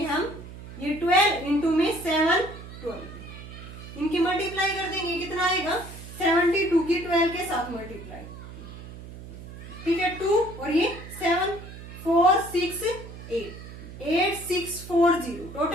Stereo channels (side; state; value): right; noise; hum, 14 dB below the sound